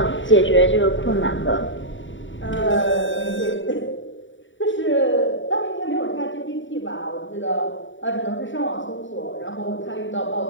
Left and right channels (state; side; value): late; right; 0.55 ms